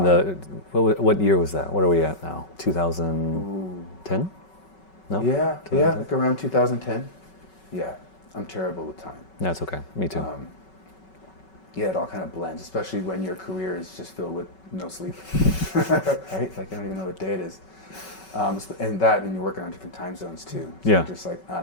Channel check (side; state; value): right; late; 5.3 ms